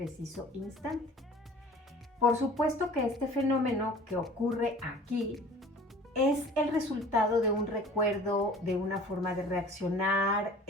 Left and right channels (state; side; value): normal; both; correlation 0.46